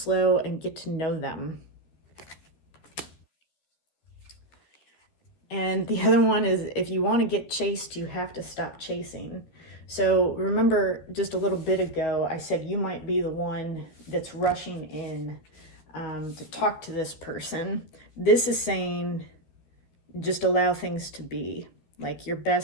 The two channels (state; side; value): late; right; 13 ms